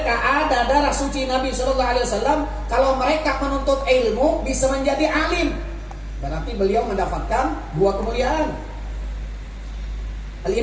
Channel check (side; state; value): both; identical; correlation 1.00